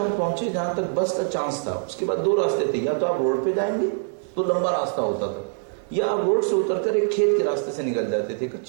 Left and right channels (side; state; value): left; silent; digital silence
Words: پہنچے جہاں تک بس کا چانس تھا. اس کے بعد 2 راستے تھے، یا تو آپ روڈ پہ جائیں گے تو لمبا راستہ ہوتا تھا، یا آپ روڈ سے اتر کر ایک کھیت کے راستے سے نکل جاتے تھے،